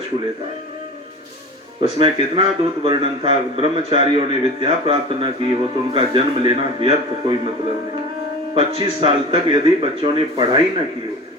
लेता है। उसमें कितना अद्भुत वर्णन था। ब्रह्मचारियों ने विद्या प्राप्त न की हो तो उनका जन्म लेना व्यर्थ, कोई मतलब नहीं। 25 साल तक यदि बच्चों ने पढ़ाई न की हो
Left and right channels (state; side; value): normal; both; correlation 0.34